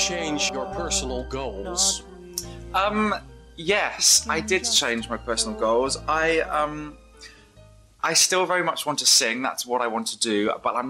your personal goals? Yes, I did change my personal goals. I still very much want to sing. That's what I want to do. But I'm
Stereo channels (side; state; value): both; identical; correlation 1.00